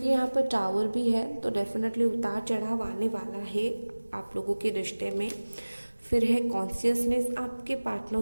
यहाँ पर टावर भी है, तो डेफिनेटली उतार चढ़ाव आने वाला है आप लोगों के रिश्ते में। फिर है कॉन्शियसनेस, आपके पार्टनर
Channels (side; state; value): both; inverted; correlation -1.00